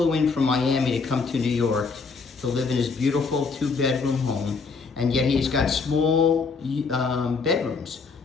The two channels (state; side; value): quieter; right; 4.7 dB